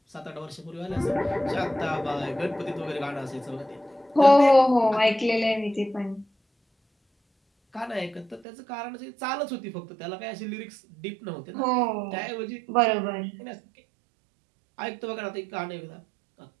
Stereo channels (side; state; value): left; drops out; at 8.5 s